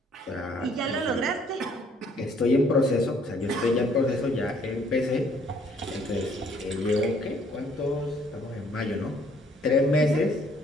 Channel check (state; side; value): normal; both; correlation 0.63